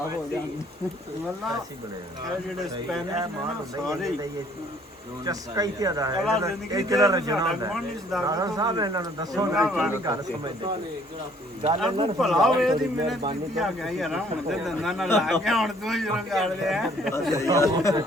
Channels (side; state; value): both; normal; correlation 0.60